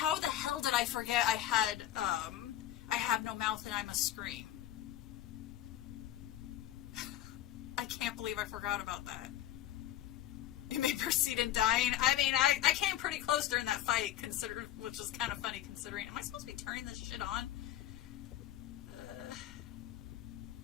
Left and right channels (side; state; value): right; quieter; 12.7 dB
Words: the hell did I forget I have no mouth and I must scream? I can't believe I forgot about that. You may proceed in dying. I mean, I came pretty close during that fight, which is kind of funny considering. Am I supposed to be turning this shit on?